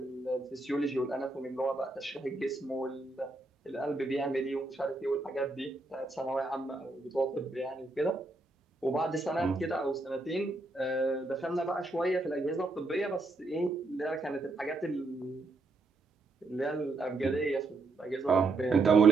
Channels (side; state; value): left; quieter; 3.2 dB